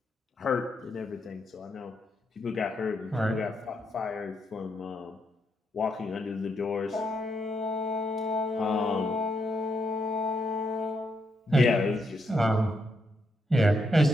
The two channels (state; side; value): normal; both; correlation 0.79